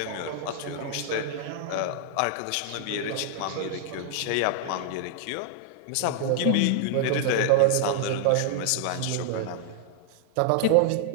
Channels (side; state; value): both; different; correlation -0.01